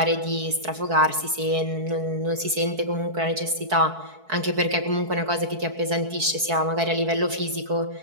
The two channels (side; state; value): left; late; 4.6 ms